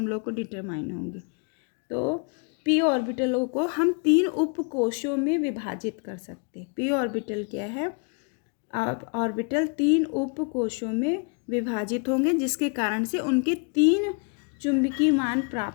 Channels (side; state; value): right; quieter; 38.6 dB